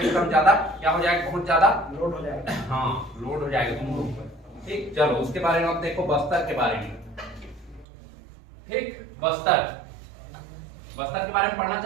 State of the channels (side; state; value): left; drops out; at 7.9 s